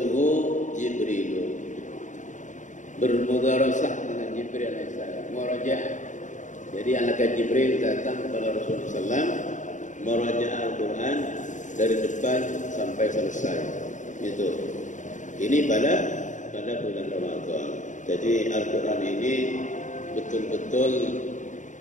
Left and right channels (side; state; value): right; late; 0.36 ms